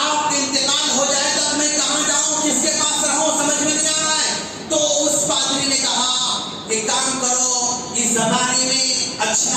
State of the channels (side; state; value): both; identical; correlation 1.00